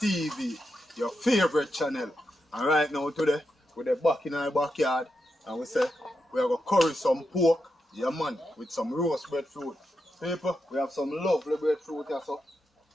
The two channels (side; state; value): both; normal; correlation 0.86